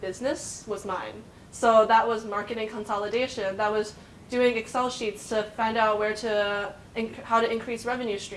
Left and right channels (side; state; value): both; identical; correlation 1.00